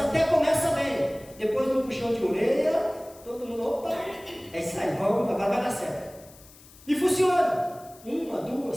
começa bem, depois do puxão de orelha, todo mundo, opa, é isso aí, vamos, agora vai dar certo. E funciona, 1,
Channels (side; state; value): left; noise; hiss, 23 dB below the sound